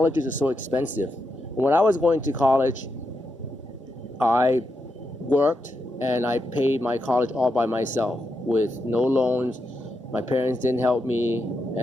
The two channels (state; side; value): normal; both; correlation 0.84